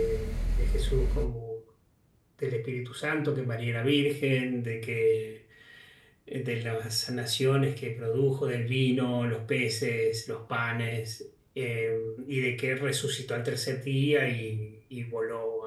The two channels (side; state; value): both; identical; correlation 1.00